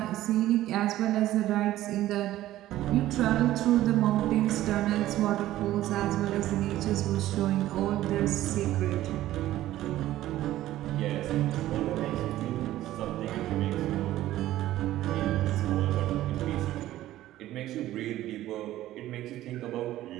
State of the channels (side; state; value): left; quieter; 14.5 dB